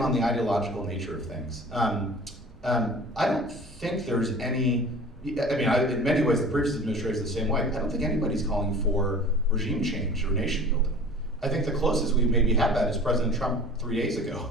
the ideological nature of things. I don't think there's any, in many ways the previous administration is the same way. I don't think anybody's calling for regime change or nation building. I think the closest we've maybe had that is President Trump 3 days ago,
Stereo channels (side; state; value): both; normal; correlation 0.42